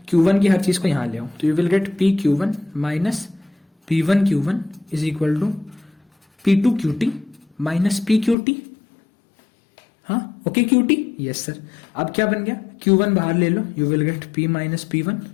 Q1 की हर चीज को यहां ले आओ, तो you will get PQ1 minus P1 Q1 is equal to P2 QT minus PQT। हाँ ओके QT, यस सर। अब क्या बन गया, Q1 बाहर ले लो, you will get P minus P1,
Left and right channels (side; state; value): right; drops out; at 8.3 s